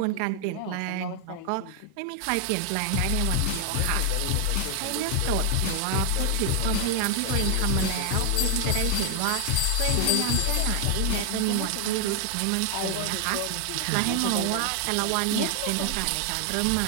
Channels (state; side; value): different; both; correlation 0.00